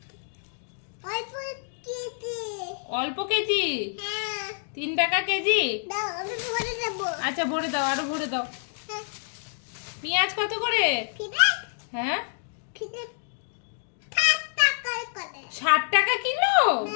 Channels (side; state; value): right; silent; digital silence